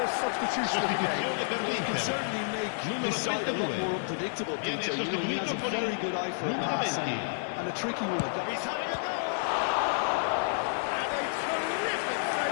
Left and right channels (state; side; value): silent; right; digital silence